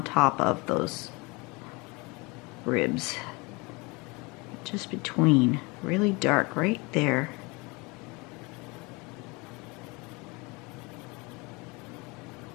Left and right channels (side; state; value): right; quieter; 26.7 dB